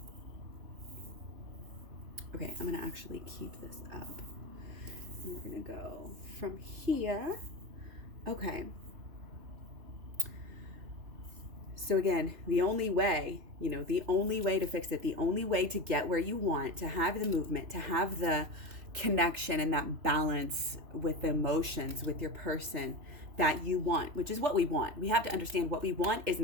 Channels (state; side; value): late; left; 3.0 ms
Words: Okay, I'm going to actually keep this up. And we're going to go from here. Okay. So again, the only way to fix it, the only way to get where you want, to have the movement, to have the connection and that balance with the emotions, with your person, that you want, which is what we want. We have to understand what we want is